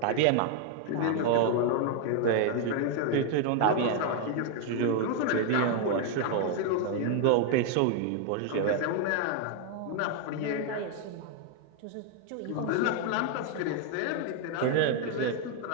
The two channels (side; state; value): both; different; correlation 0.00